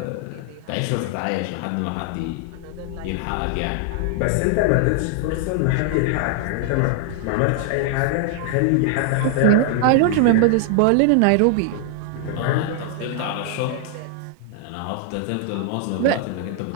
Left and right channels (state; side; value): different; both; correlation 0.00